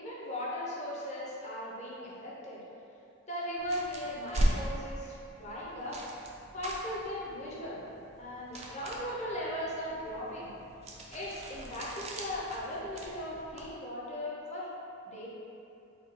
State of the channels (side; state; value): both; normal; correlation 0.30